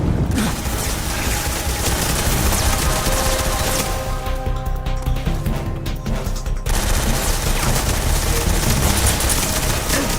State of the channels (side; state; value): both; identical; correlation 1.00